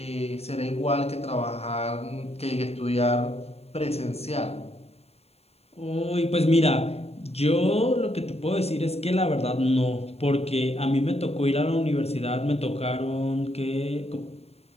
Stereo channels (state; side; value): late; right; 0.30 ms